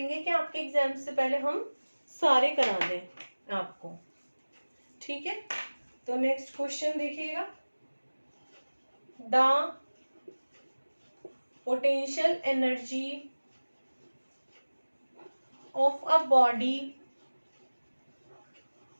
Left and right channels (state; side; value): inverted; both; correlation -1.00